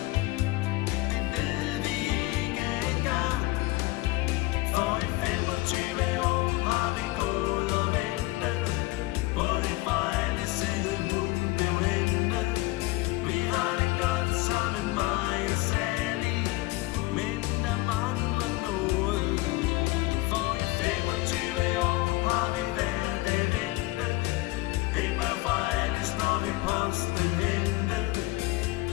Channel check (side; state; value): right; quieter; 20.1 dB